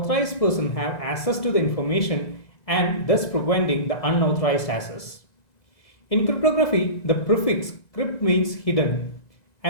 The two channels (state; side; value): late; right; 1.9 ms